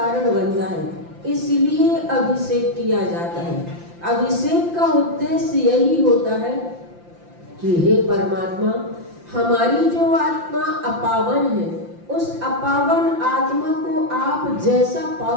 बनता है, इसलिए अभिषेक किया जाता है। अभिषेक का उद्देश्य यही होता है कि हे परमात्मा, हमारी जो आत्मा अपावन है, उस अपावन आत्मा को आप जैसा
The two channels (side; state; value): left; late; 5.8 ms